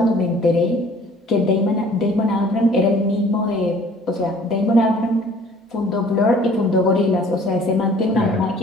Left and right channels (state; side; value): normal; both; correlation 0.53